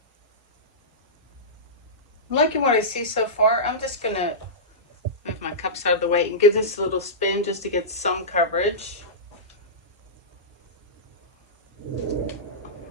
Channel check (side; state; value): both; normal; correlation -0.16